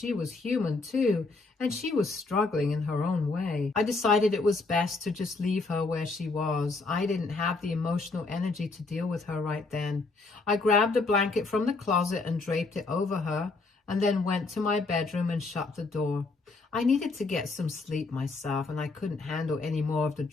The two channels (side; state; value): right; quieter; 3.7 dB